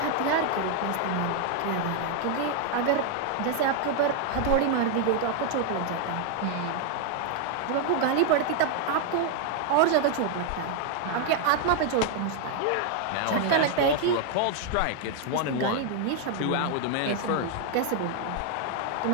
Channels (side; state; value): both; different; correlation 0.00